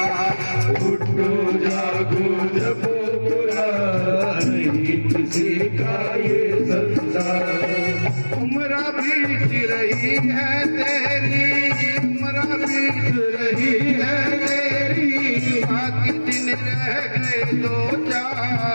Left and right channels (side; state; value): both; inverted; correlation -1.00